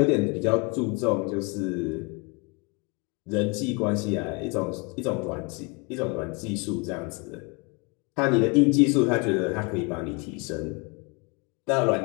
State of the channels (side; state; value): right; quieter; 30.1 dB